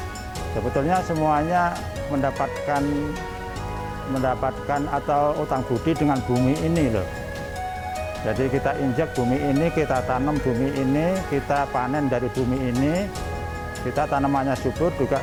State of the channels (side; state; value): both; identical; correlation 1.00